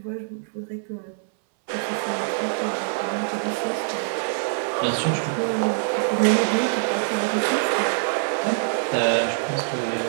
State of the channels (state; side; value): silent; left; 62 dB below the other